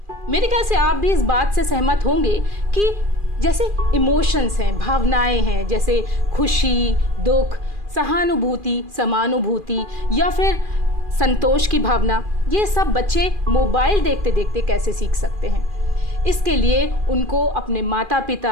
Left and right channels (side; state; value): left; late; 2.4 ms